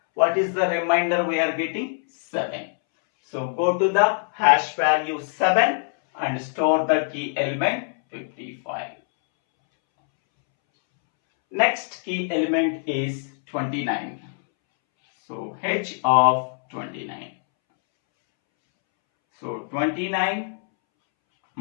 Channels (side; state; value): right; silent; 63 dB below the other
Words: What is the remainder we are getting? 7. So go to the hash value 7 and store the key element 55. Next key element is 29. So h of 29. So 29